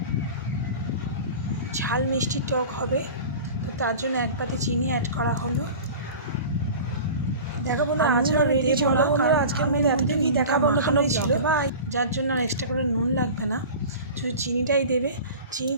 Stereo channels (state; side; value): inverted; both; correlation -0.37